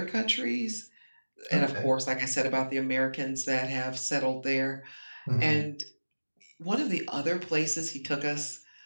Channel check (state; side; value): inverted; both; correlation -1.00